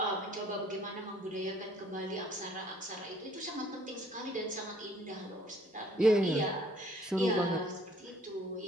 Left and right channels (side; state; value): both; normal; correlation 0.59